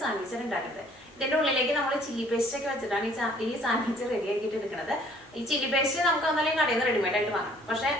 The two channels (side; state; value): both; normal; correlation 0.58